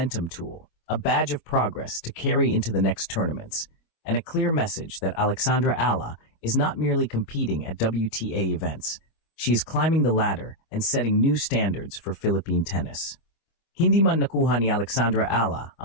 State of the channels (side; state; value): right; late; 25 ms